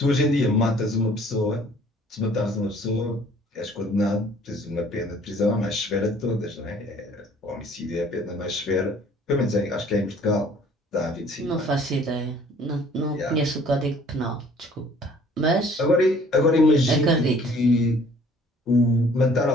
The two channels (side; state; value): both; normal; correlation 0.55